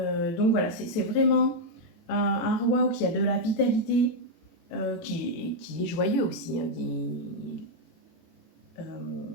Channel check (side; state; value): right; late; 18 ms